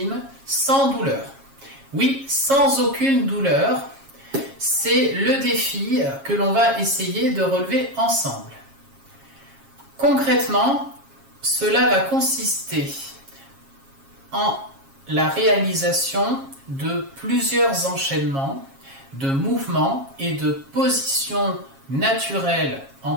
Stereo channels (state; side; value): late; left; 7.4 ms